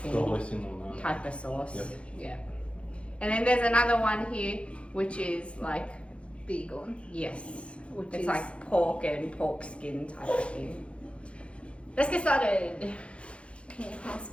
The hoisin on that. type of sauce. Yep. Yeah. And then there's another one here which is like Bacon. yes, Which it's is like pork and pork skin type of thing. Let's get started. Can you pass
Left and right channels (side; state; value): right; late; 0.060 ms